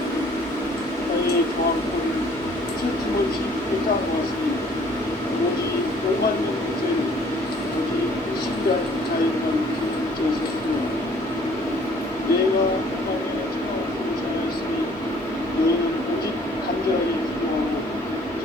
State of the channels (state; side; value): normal; both; correlation 0.57